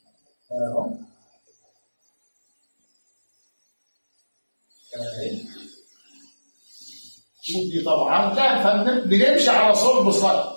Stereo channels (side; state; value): both; inverted; correlation -1.00